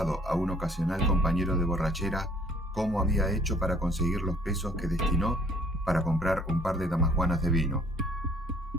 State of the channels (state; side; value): normal; both; correlation 0.58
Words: a un ocasional compañero de borrachera cómo había hecho para conseguir los pesos que destinó para comprar un par de damajuanas de vino.